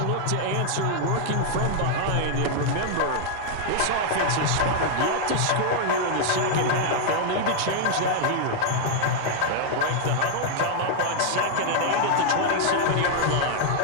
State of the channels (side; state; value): both; different; correlation 0.00